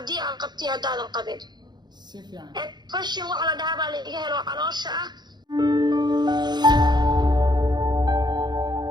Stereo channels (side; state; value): left; late; 0.21 ms